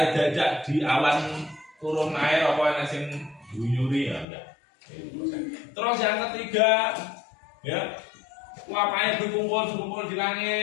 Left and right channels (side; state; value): right; drops out; at 4.2 s